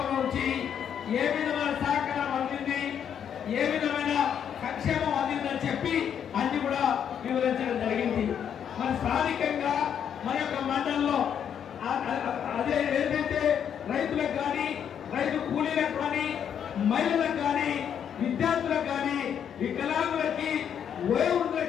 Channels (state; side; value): quieter; right; 8.5 dB